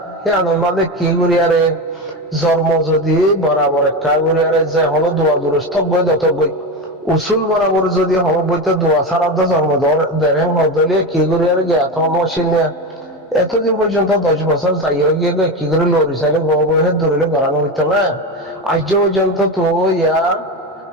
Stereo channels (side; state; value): both; normal; correlation 0.19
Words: হে আনন্দ কি করি আরে জন্ম যদি বরাবর একটা করি আরে যে হলো দোয়া দুরস্থ বই দত বই উসুল বরাবর যদি হলো বইতে দোয়া ছাড়া তো জন্ম দেড় হদলিয়ে কি করি আরে গে এত মশিল নিয়ে এতদিন পর্যন্ত 10 বছর যাই হয়ে গিয়ে কি করে লড়ি চাইলে বহে ধরিলে করানো হইতো না আজ পর্যন্ত তো ইয়া